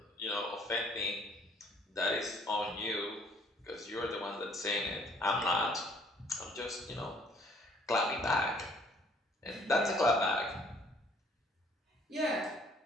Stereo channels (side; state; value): both; normal; correlation 0.60